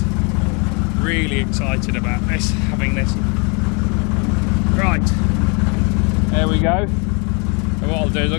Really excited about this, having this. Right. There we go. So what I'll do is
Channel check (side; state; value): right; quieter; 33.2 dB